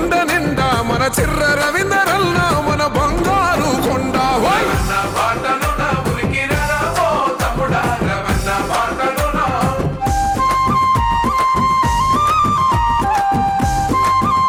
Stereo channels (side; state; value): both; identical; correlation 1.00